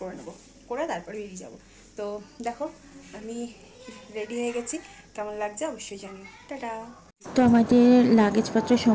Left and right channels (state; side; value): identical; both; correlation 1.00